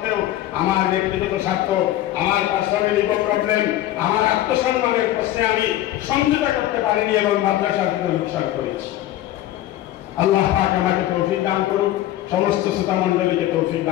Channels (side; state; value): right; quieter; 14.0 dB